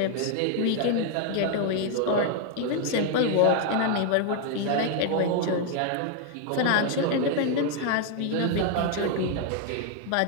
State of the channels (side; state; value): both; different; correlation 0.00